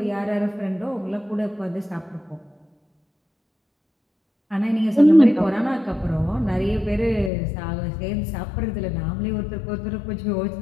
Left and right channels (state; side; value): drops out; right; at 7.3 s